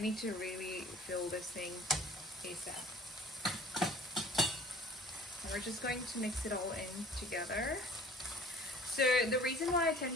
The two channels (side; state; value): both; normal; correlation 0.48